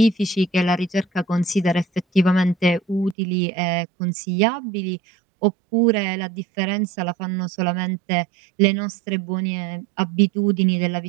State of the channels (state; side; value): drops out; left; at 3.2 s